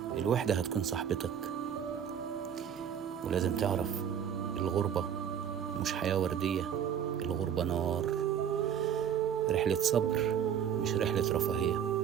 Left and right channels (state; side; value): quieter; left; 8.6 dB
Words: الوحدة هتكون صاحبتك، ولازم تعرف الغربة مش حياة وردية، الغربة نار، رحلة صبر مش رحلة رفاهية.